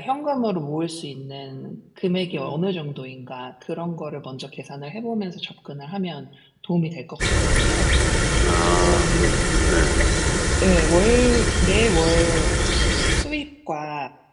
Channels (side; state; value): both; identical; correlation 1.00